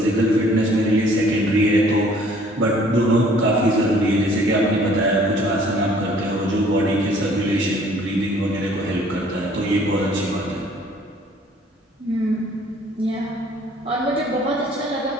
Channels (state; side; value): normal; both; correlation 0.57